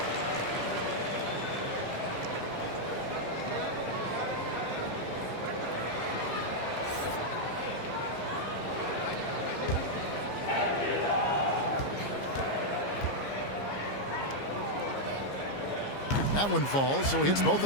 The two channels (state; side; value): late; right; 15 ms